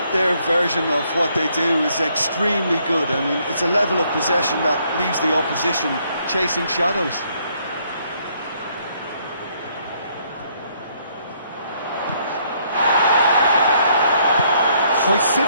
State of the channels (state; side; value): inverted; both; correlation -0.69